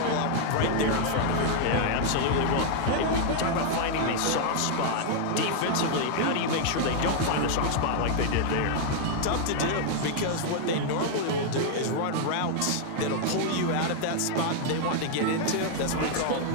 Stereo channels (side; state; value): both; different; correlation 0.00